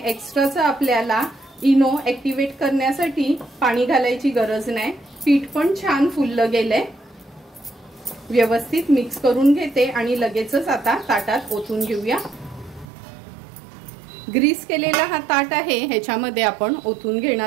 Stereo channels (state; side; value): drops out; left; at 12.9 s